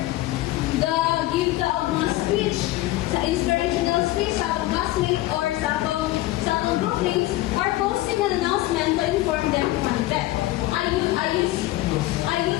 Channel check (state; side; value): quieter; right; 17.0 dB